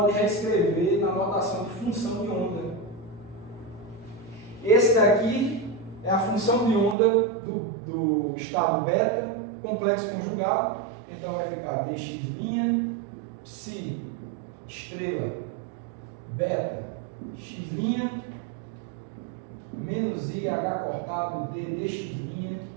reescrever na notação de função de onda. Esse daqui é a função de onda do estado beta, complexo conjugado. Então vai ficar dx', psi, estrela, beta, x', menos i h cortado ddx'.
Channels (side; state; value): left; drops out; at 7.0 s